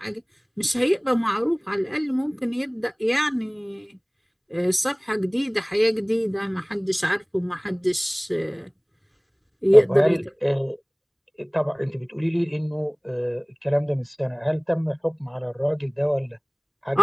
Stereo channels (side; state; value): both; identical; correlation 1.00